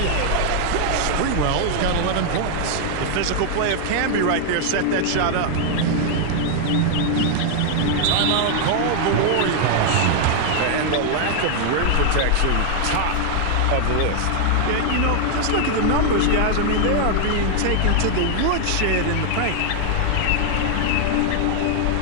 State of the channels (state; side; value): different; both; correlation 0.00